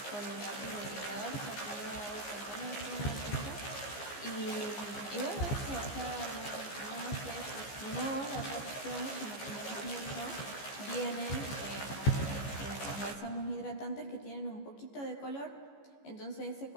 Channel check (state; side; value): late; right; 14 ms